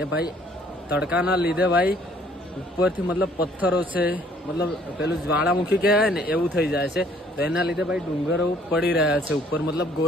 એ ભાઈ તડકાના લીધે ભાઈ ઉપરથી મતલબ પથ્થરો છે, મતલબ પેલું જ્વાળામુખી કહેવાય ને એવું થઈ જાય છે, તો એના લીધે ભાઈ ડુંગરો પડી રહ્યા છે ઉપર, મતલબ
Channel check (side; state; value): both; normal; correlation 0.60